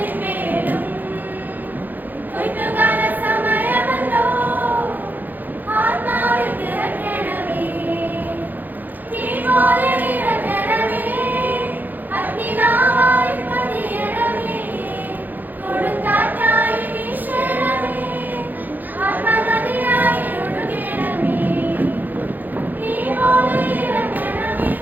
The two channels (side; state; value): left; late; 0.085 ms